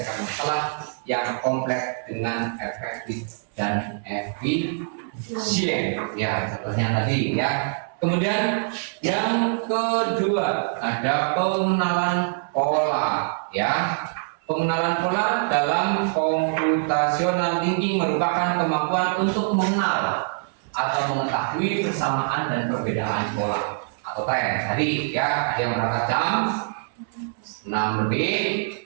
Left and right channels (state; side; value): silent; left; 62 dB below the other